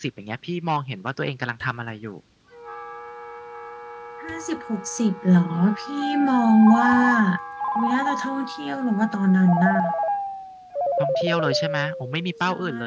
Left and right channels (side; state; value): both; identical; correlation 1.00